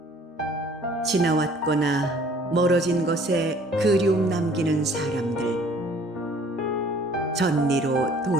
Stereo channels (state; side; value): normal; both; correlation 0.55